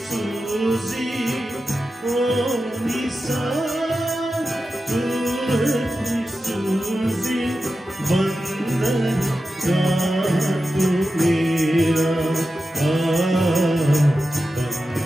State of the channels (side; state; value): both; normal; correlation 0.92